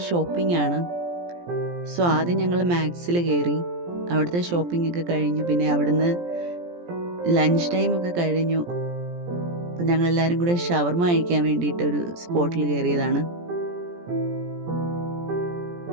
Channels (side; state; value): left; late; 17 ms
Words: ഷോപ്പിംഗ് ആണ്. സോ ആദ്യം ഞങ്ങൾ മാക്സിൽ കയറി, അവിടുത്തെ ഷോപ്പിംഗ് ഒക്കെ കഴിഞ്ഞു. പിന്നെ അവിടുന്ന് ലഞ്ച് ടൈം ഒക്കെ കഴിഞ്ഞു. അപ്പം ഞങ്ങൾ എല്ലാവരും കൂടെ ഷവർമ കഴിക്കാൻ വേണ്ടിയിട്ട് ഒരു സ്പോട്ടിൽ കയറിയതാണ്.